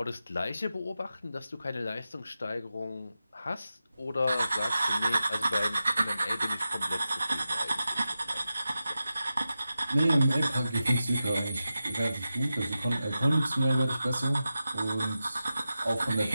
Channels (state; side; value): inverted; both; correlation -0.92